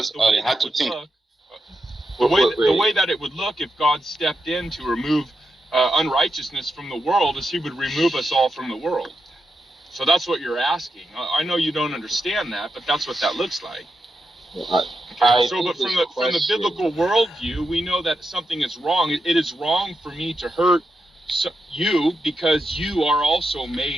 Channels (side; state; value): both; normal; correlation 0.86